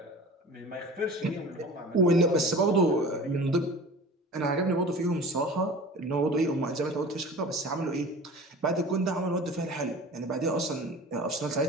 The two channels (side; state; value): both; normal; correlation 0.39